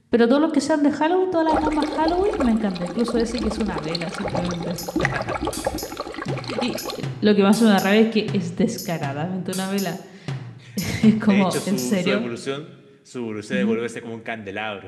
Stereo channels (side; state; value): both; identical; correlation 1.00